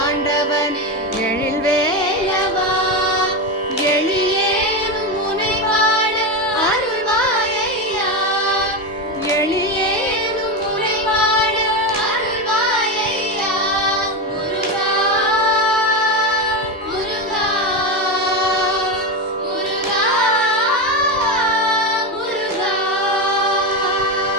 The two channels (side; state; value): both; normal; correlation 0.15